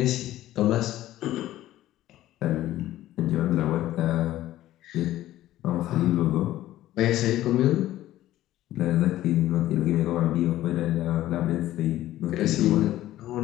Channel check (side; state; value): right; quieter; 14.4 dB